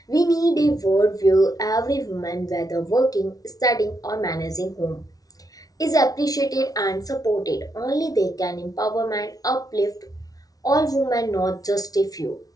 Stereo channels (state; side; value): late; right; 0.18 ms